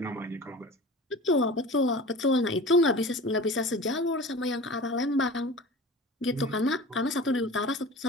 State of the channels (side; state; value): both; normal; correlation 0.37